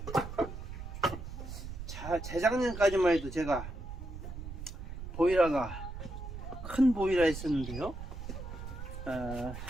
재작년까지만 해도 제가 보이라가 큰 보이라 있었는데요.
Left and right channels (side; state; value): right; noise; rumble, 9 dB below the sound